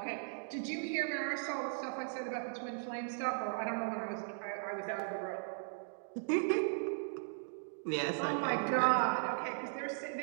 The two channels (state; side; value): silent; left; digital silence